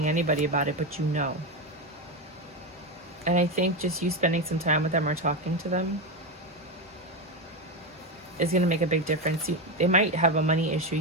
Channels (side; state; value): both; normal; correlation 0.13